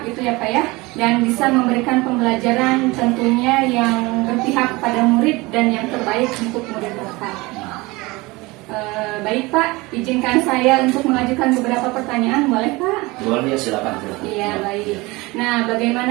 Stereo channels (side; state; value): left; quieter; 22.9 dB